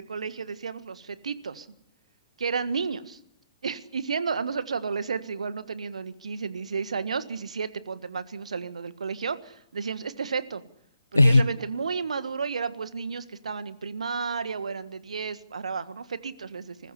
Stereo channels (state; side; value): inverted; both; correlation -0.84